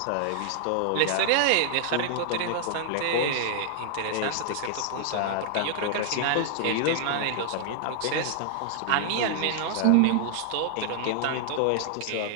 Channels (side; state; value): both; different; correlation 0.00